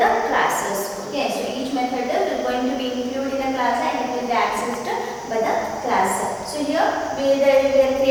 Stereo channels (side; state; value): both; identical; correlation 1.00